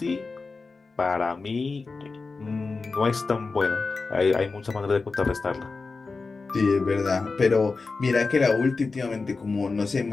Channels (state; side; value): quieter; right; 4.1 dB